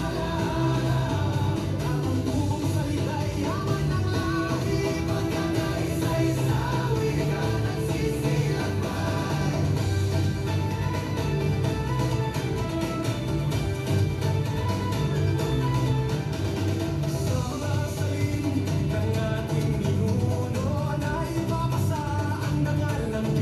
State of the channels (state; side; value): identical; both; correlation 1.00